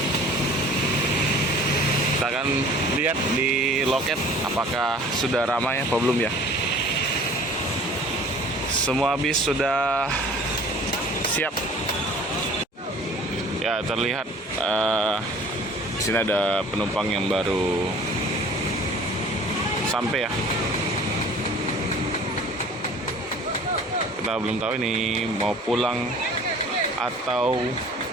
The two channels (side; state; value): both; normal; correlation 0.47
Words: Kita akan lihat di loket apakah sudah ramai apa belum ya. Semua bis sudah siap. Ya, terlihat di sini ada penumpang yang baru sampai ya. Kita belum tahu ini mau pulang atau